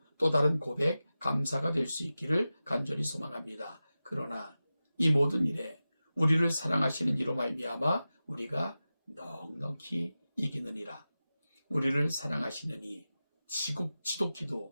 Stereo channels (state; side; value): inverted; both; correlation -0.95